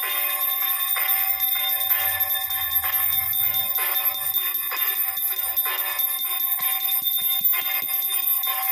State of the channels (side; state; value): both; identical; correlation 1.00